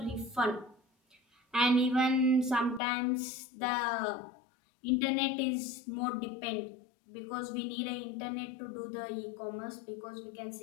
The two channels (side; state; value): right; drops out; at 2.8 s